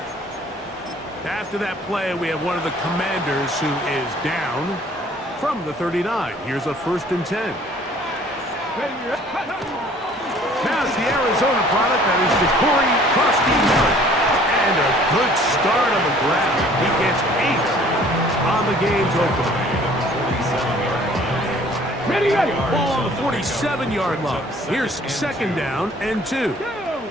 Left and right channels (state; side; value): normal; both; correlation 0.54